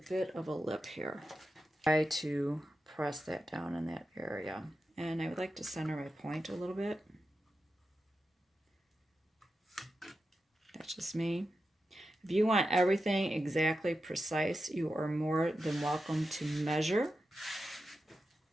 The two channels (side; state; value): both; normal; correlation 0.90